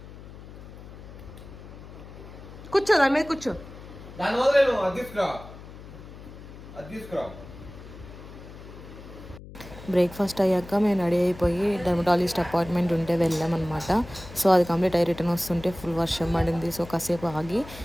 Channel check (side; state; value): left; noise; hum, 16 dB below the sound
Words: కూర్చో, దాని మీద కూర్చో. దాని వదిలేను. అది తీసుకురా, అది తీసుకురా. బ్రేక్ఫాస్ట్ అయ్యాక మేము రెడీ అయిపోయి డెర్మటాలజిస్ట్ అపాయింట్మెంట్ ఉంటే వెళ్ళామన్నమాట. సో అది కంప్లీట్ అయ్యి రిటర్న్ వస్తుంటే ఫుల్ వర్షం పడింది. సో కాసేపు ఆగి